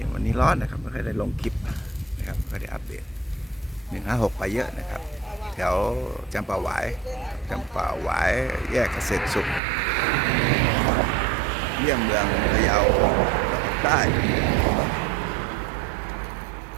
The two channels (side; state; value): left; drops out; at 9.6 s